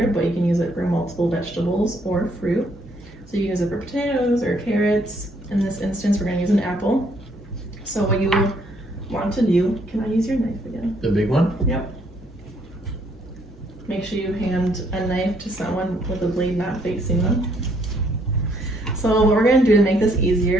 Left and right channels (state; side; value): normal; both; correlation 0.68